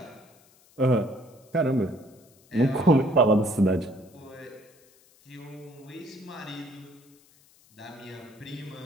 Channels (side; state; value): left; noise; hiss, 29 dB below the sound